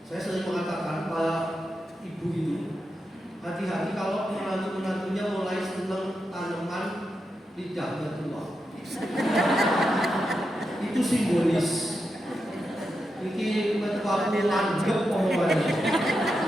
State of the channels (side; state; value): both; normal; correlation 0.87